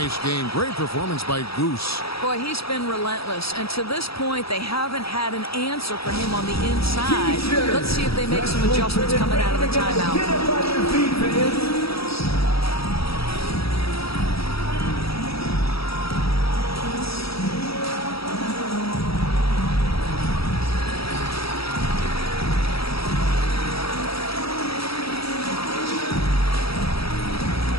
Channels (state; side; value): late; right; 0.76 ms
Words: game. Great performance by Goose. Boy, he's been relentless. And to this point, they haven't had an answer for him on the inside. Let's see if they make some adjustments coming out of the timeout.